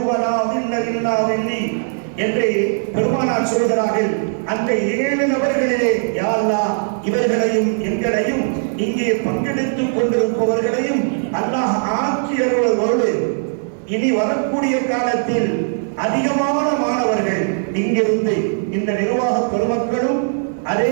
லா தில்ல இல்லா தில்லி என்று பெருமானார் சொல்கிறார்கள். அந்த 7 நபர்களிலே யா அல்லாஹ் இவர்களையும் எங்களையும் இங்கே பங்கெடுத்துக் கொண்டிருப்பவர்களையும் அல்லாஹ் ஆக்கி அருள்வதோடு இனி வரக்கூடிய காலத்தில் அதிகமான மாணவர்கள் இங்கிருந்து இந்த நிர்வாக பெருமக்களும் அதே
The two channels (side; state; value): left; silent; 67 dB below the other